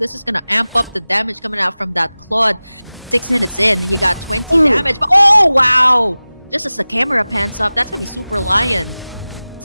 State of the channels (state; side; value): inverted; both; correlation -0.98